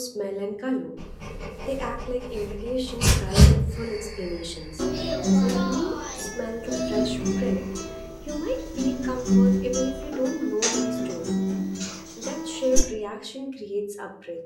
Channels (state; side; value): identical; both; correlation 1.00